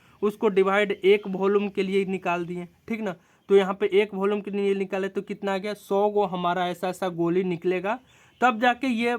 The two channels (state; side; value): identical; both; correlation 1.00